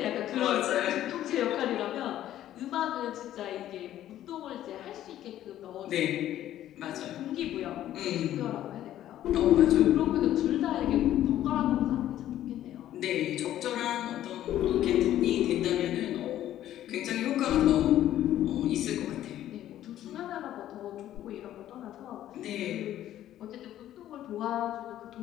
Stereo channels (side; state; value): right; quieter; 12.5 dB